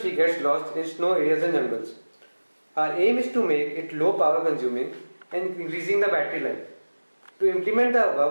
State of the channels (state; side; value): inverted; both; correlation -1.00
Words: gets lost in snow areas and jungles. Our aim is to make it low power consuming and increasing the battery life. To implement the